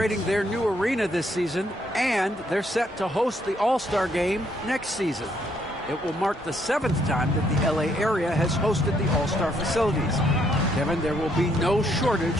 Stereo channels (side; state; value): both; normal; correlation 0.71